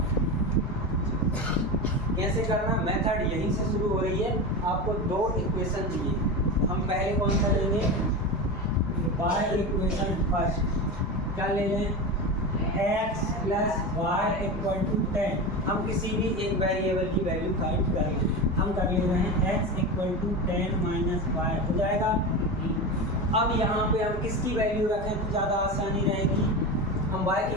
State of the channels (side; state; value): both; normal; correlation 0.23